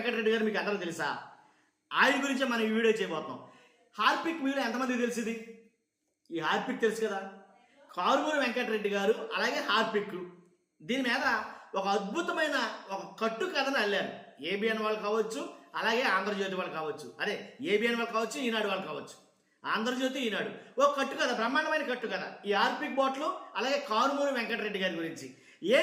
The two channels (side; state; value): both; identical; correlation 1.00